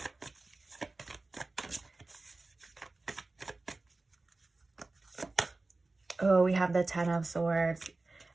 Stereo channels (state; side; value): quieter; left; 3.3 dB